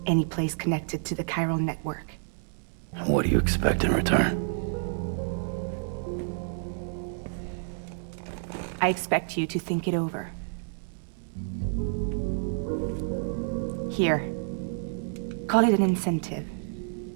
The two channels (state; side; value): silent; left; 59 dB below the other